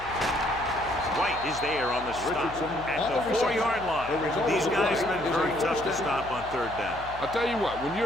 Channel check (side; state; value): left; noise; hum, 15 dB below the sound